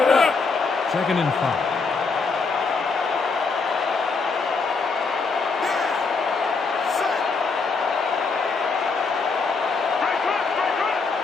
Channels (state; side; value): quieter; right; 4.5 dB